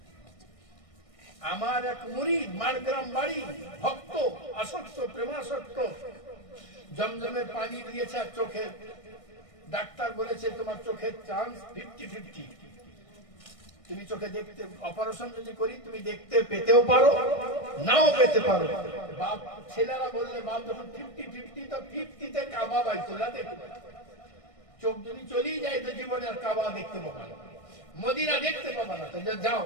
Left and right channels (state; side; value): late; right; 1.6 ms